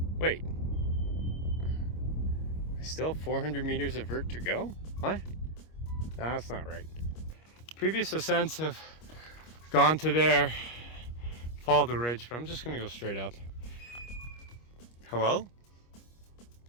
wait. I still have 400 meters of vert to go? What? No, that's not right. Previous ascents have gone to there, follow the ridge, but I'm just gonna go straight up. Hello?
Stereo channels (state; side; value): late; right; 25 ms